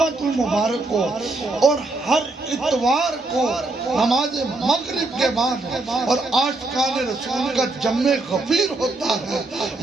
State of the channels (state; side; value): quieter; left; 3.0 dB